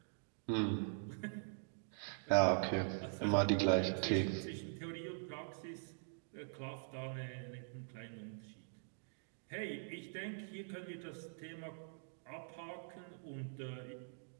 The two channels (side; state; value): left; silent; digital silence